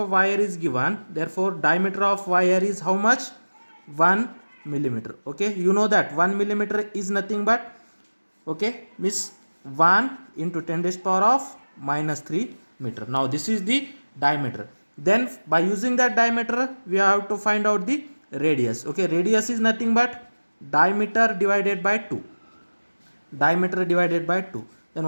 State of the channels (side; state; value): both; inverted; correlation -1.00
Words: wire is given. Therefore, diameter of wire is how much? 1 millimeter. Okay. You know that 1 millimeter is nothing but, okay, means 1 into 10 raised power of minus 3 meter. Now this is the diameter. Then by using that diameter we have to find out the radius. Okay, radius is nothing but diameter divided by 2. Diameter divided by 2. Then